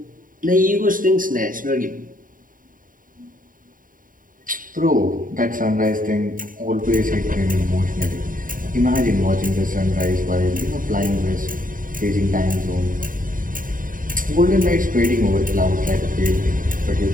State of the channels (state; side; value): late; left; 0.40 ms